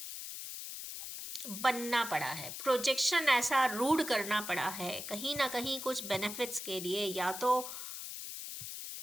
बनना पड़ा है, प्रोजेक्शन ऐसा रूड करना पड़ा है कहीं ना कहीं कुछ बेनिफिट्स के लिए, या तो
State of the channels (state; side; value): noise; left; hiss, 8 dB below the sound